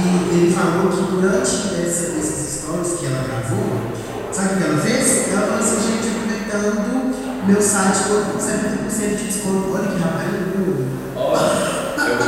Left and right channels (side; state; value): both; identical; correlation 1.00